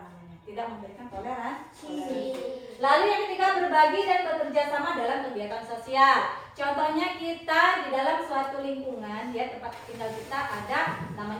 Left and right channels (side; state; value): both; identical; correlation 1.00